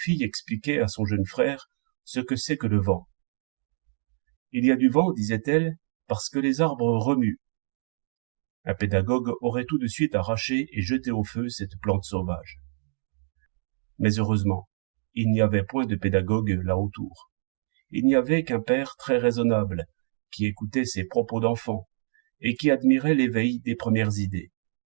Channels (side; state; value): left; silent; digital silence